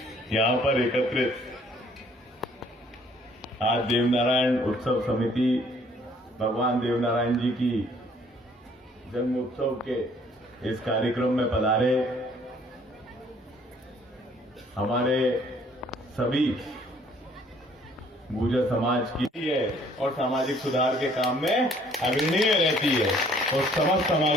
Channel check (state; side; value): normal; both; correlation 0.60